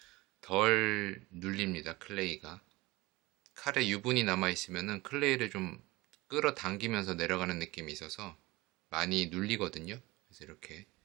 덜 눌립니다. 클레이가. 칼에 유분이 남아 있으면은 클레이를 좀 끌어당기면서 내려가는 느낌이 있어서 많이 눌리거든요. 그래서 이렇게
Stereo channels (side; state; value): left; quieter; 21.0 dB